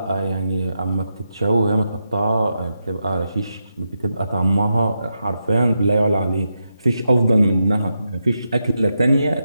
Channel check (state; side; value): inverted; both; correlation -0.86